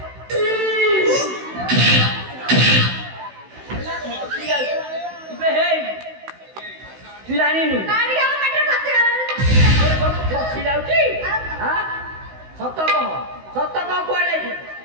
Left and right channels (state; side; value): late; left; 16 ms